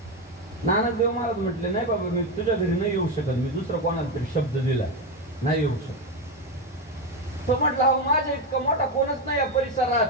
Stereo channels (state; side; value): normal; both; correlation 0.12